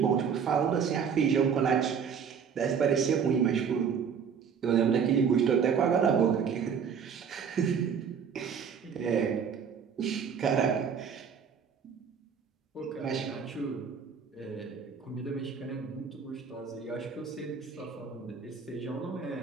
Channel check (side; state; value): left; quieter; 6.9 dB